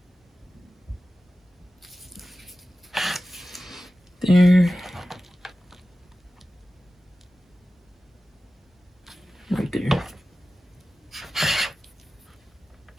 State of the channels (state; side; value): normal; both; correlation 0.95